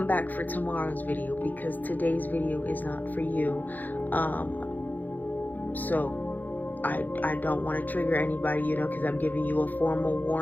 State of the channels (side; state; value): right; late; 0.084 ms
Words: back for tomorrow's video, because today's video is not for you. So I don't want to trigger anybody, because I'm giving you a formal